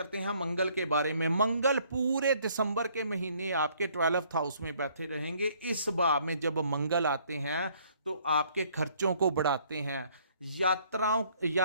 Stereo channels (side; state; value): both; inverted; correlation -0.63